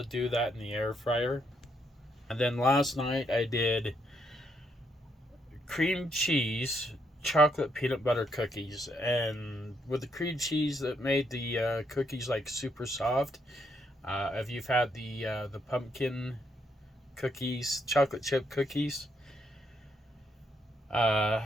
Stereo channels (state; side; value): normal; both; correlation 0.75